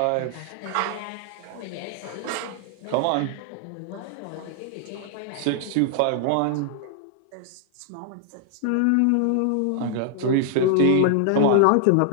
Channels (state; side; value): different; both; correlation 0.00